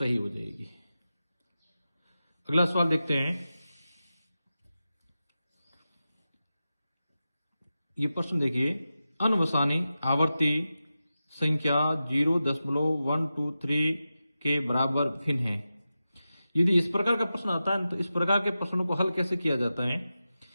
हो जाएगी। अगला सवाल देखते हैं। ये प्रश्न देखिए, अनवसानी आवर्ती संख्या 0.123 के बराबर भिन्न है। यदि इस प्रकार का प्रश्न आता है तो इस प्रकार के प्रश्नों को हल कैसे किया जाता है,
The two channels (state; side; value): inverted; both; correlation -0.92